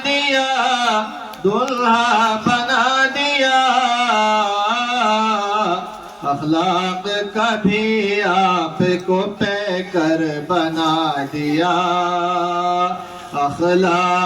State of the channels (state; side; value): identical; both; correlation 1.00